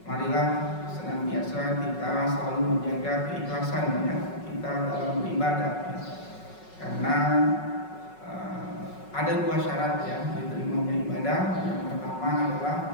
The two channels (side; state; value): right; late; 5.4 ms